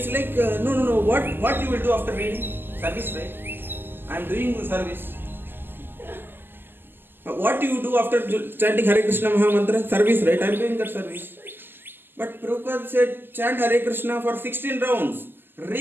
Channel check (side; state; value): left; late; 0.097 ms